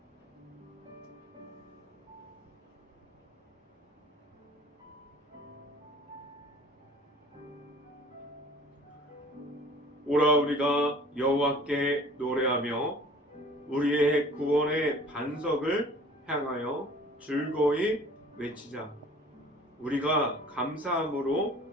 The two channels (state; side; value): normal; both; correlation 0.48